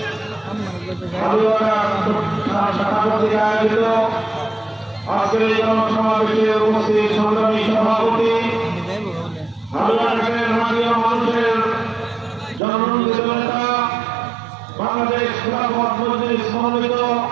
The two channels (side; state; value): left; drops out; at 12.6 s